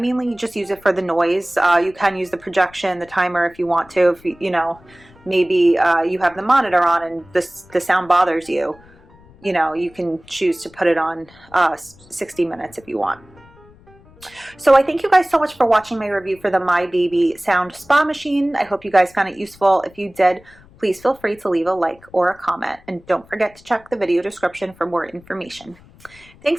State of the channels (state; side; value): noise; left; rumble, 26 dB below the sound